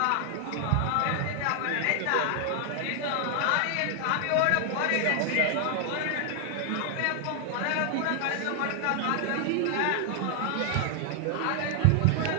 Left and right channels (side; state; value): both; different; correlation 0.00